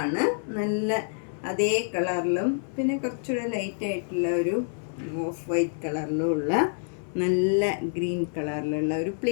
നല്ല അതേ കളറിലും പിന്നെ കുറച്ചുകൂടെ ലൈറ്റായിട്ടുള്ള ഒരു ഓഫ് വൈറ്റ് കളറിലും ഉള്ള നല്ല ഗ്രീൻ കളറിലുള്ള ഒരു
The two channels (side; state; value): right; silent; 60 dB below the other